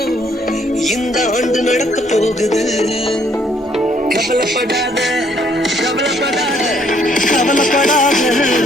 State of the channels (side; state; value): both; normal; correlation 0.66